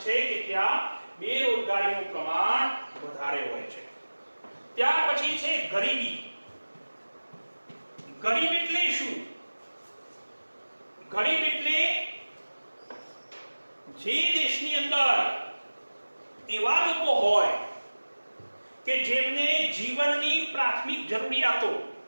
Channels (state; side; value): inverted; both; correlation -1.00